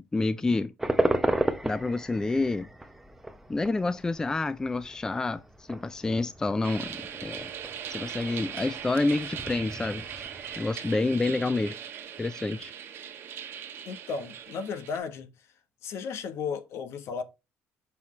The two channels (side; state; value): both; normal; correlation 0.88